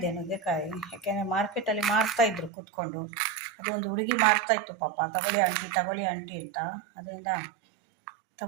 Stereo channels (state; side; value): drops out; left; at 2.5 s